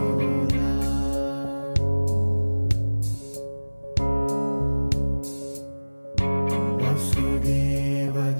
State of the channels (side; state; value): both; inverted; correlation -1.00